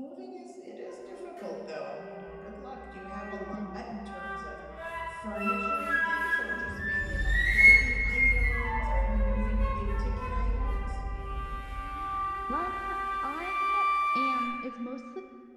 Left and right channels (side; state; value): both; identical; correlation 1.00